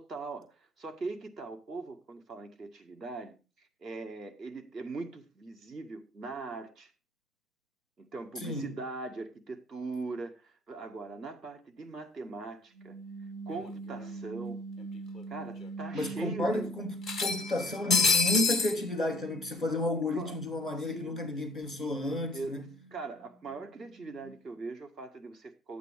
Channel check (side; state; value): both; normal; correlation 0.55